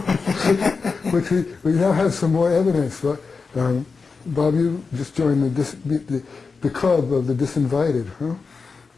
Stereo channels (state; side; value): quieter; right; 4.7 dB